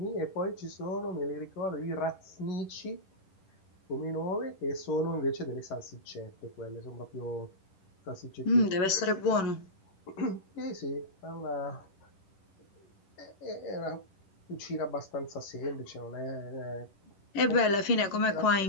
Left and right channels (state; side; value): late; right; 10 ms